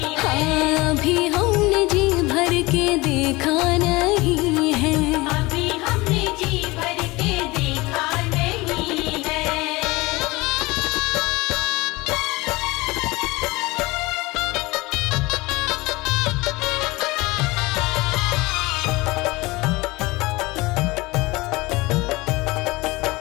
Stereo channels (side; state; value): right; quieter; 22.2 dB